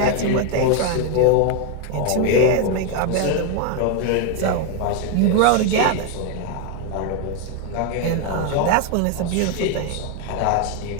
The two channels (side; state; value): both; different; correlation 0.01